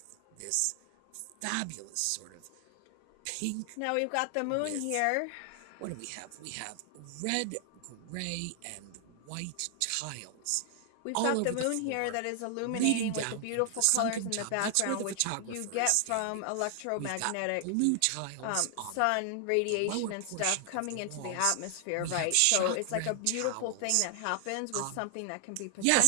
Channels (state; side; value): different; both; correlation 0.00